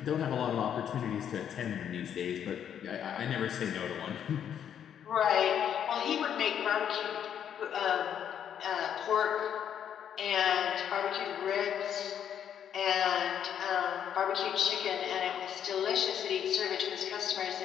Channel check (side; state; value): right; quieter; 9.1 dB